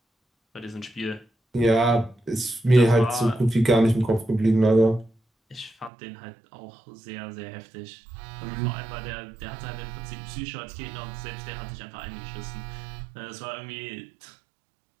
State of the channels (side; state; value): left; drops out; at 5.9 s